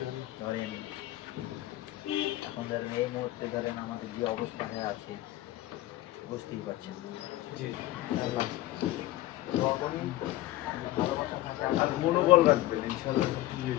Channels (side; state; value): right; quieter; 16.1 dB